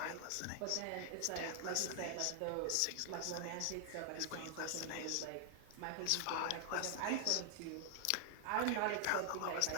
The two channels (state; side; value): different; both; correlation 0.00